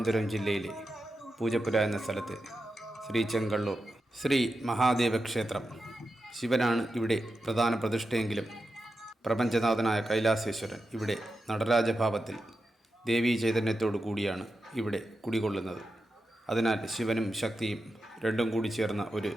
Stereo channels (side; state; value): both; normal; correlation 0.89